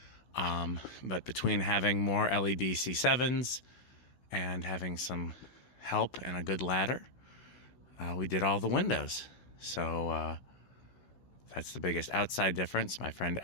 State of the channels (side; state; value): right; late; 16 ms